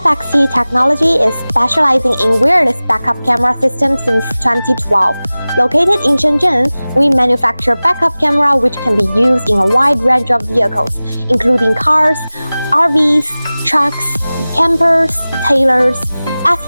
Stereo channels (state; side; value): inverted; both; correlation -0.98